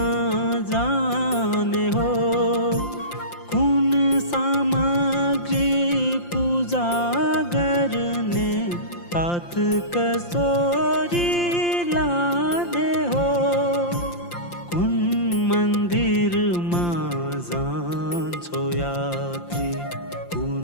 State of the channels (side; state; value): right; late; 5.8 ms